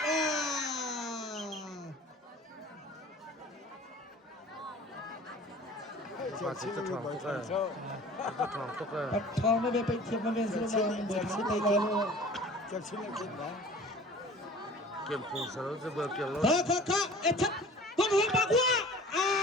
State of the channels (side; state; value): both; normal; correlation 0.44